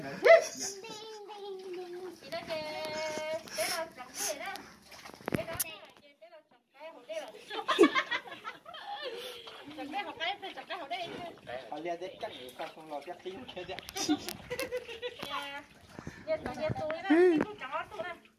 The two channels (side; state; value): both; identical; correlation 1.00